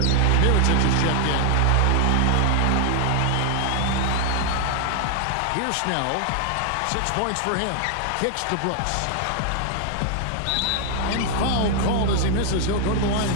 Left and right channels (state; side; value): different; both; correlation 0.00